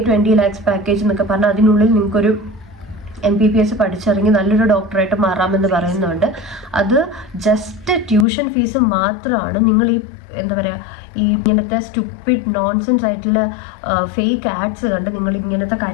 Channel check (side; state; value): right; drops out; at 8.2 s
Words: 20 lakhs പാക്കേജ് എന്നൊക്കെ പറഞ്ഞാൽ അതിനുള്ളിൽ നിങ്ങൾക്കൊരു MPBS പഠിച്ചിറങ്ങി നല്ലൊരു ഡോക്ടറായിട്ട് മാറാമെന്ന് പറയുന്നുണ്ട്. അത് ജസ്റ്റ് ട്യൂഷൻ ഫീസ് മാത്രമാണ്. നിങ്ങൾ ഈ എന്താ പറയുക, ഈ ഇങ്ങനത്തെ സ്റ്റുപ്പിഡ് നോൺസെൻസ് ആയിട്ടുള്ള ഫേക്ക് ആഡ്സ് കണ്ട് നിങ്ങൾ ഇങ്ങനത്തെ